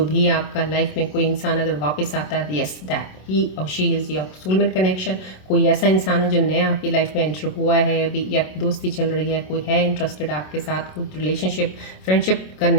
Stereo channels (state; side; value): late; right; 27 ms